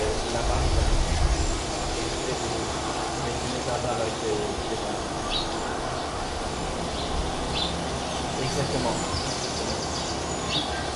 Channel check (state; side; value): identical; both; correlation 1.00